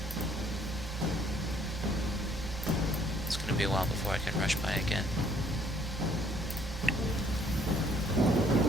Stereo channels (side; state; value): right; noise; hum, 10 dB below the sound